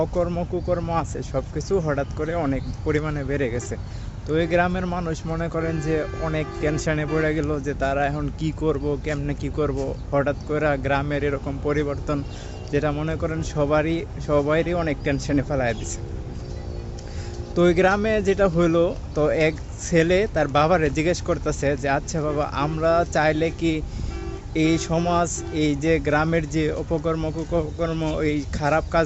অকর্ম কুকর্ম আছে সব কিছু হঠাৎ করে অনেক পরিমাণে বেড়ে গেছে। তো এই গ্রামের মানুষ মনে করেন যে অনেক টেনশনে পড়ে গেল যে তারা এখন কি করব, কেমনে কি করব। হঠাৎ করে গ্রামের এরকম পরিবর্তন যেটা মনে করেন সবাইরই অনেক টেনশনে ফেলায় দিছে। তো ওই গ্রামে যেটা হলো, তো এক ছেলে তার বাবারে জিজ্ঞেস করতেছে যে আচ্ছা বাবা, আমরা চাইলে কি এই সমাজ, এই যে গ্রামের যে অপকর্ম কুকর্ম, এই খারাপ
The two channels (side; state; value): both; identical; correlation 1.00